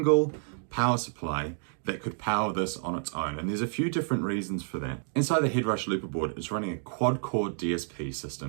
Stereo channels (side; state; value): left; silent; digital silence